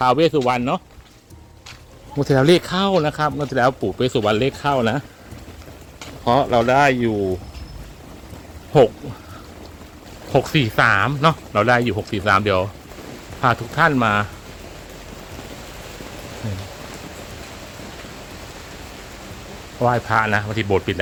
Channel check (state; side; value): identical; both; correlation 1.00